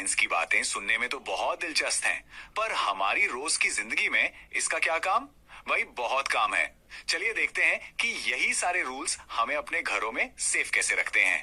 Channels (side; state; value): both; identical; correlation 1.00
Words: की बातें सुनने में तो बहुत दिलचस्प हैं, पर हमारी रोज की जिंदगी में इसका क्या काम? भाई बहुत काम है। चलिए देखते हैं कि यही सारे रूल्स हमें अपने घरों में सेफ कैसे रखते